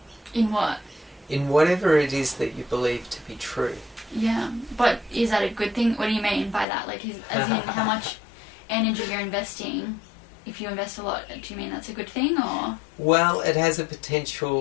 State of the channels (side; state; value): right; drops out; at 6.7 s